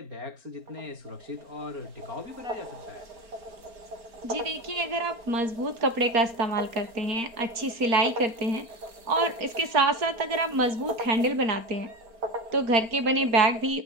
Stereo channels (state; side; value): late; left; 4.4 ms